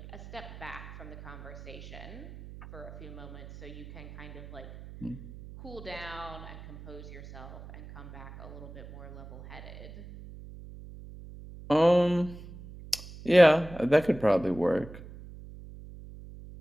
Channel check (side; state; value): right; noise; hum, 15 dB below the sound